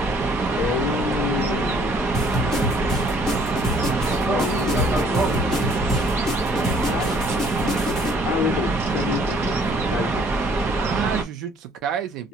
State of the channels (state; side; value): normal; both; correlation 0.60